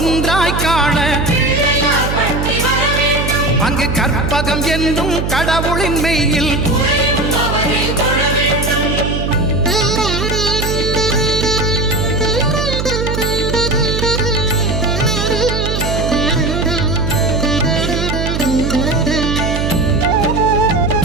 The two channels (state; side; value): noise; right; hum, 2 dB below the sound